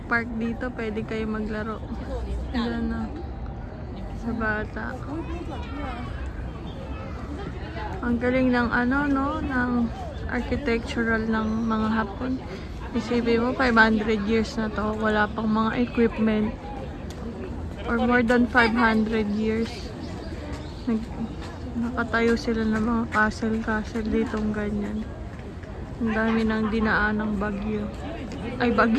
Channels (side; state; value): both; identical; correlation 1.00